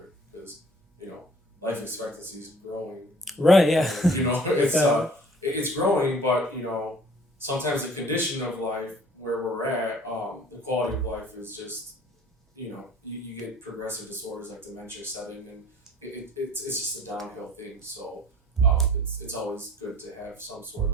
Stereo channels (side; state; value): both; normal; correlation 0.51